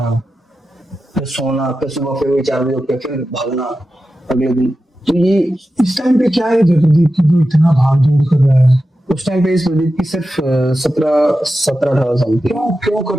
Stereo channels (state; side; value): normal; both; correlation 0.92